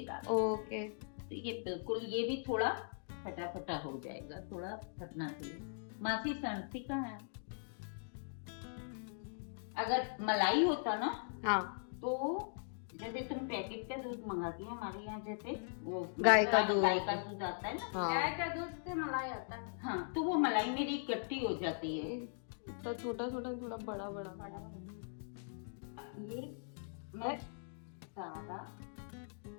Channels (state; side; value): silent; right; digital silence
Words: डाल। ओके, तो ये बिल्कुल, ये भी थोड़ा फटाफटा हो जाएगा, थोड़ा फटना चाहिए। मासी सनती का है, अगर मलाई होता ना हाँ तो जैसे तुम पैकेट का दूध मंगाती हो, हमारे यहाँ जैसे वो गाय का दूध आता है ना। हाँ। गाय का दूध से मलाई आता है। हाँ, तो वो मलाई मेरी इकट्ठी हो जाती है। तो छोटा छोटा थोड़ा बड़ा बड़ा ये मैं सारा